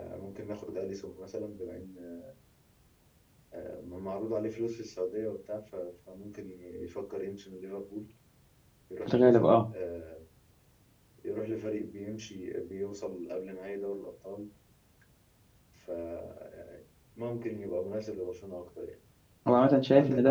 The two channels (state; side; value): identical; both; correlation 1.00